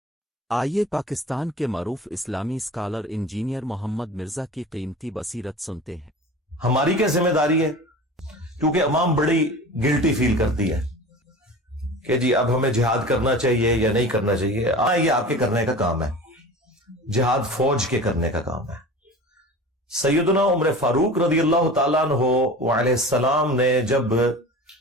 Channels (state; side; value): normal; both; correlation 0.36